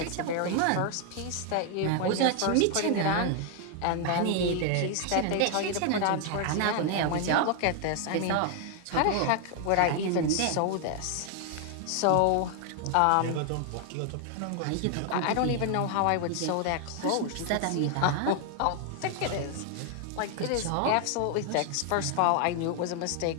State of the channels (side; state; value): both; different; correlation 0.00